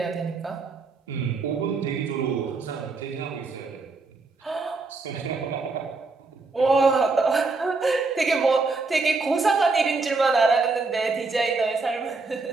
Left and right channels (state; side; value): quieter; left; 3.9 dB